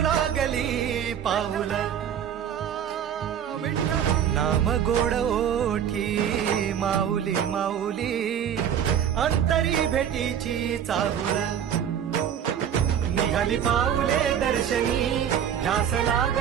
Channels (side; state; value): left; quieter; 9.0 dB